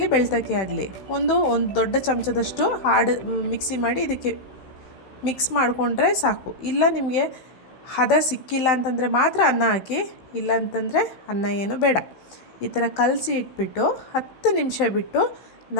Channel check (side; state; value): right; late; 16 ms